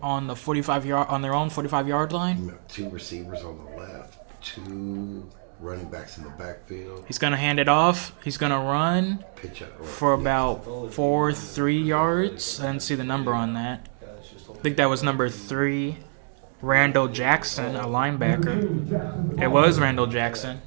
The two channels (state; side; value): silent; left; 61 dB below the other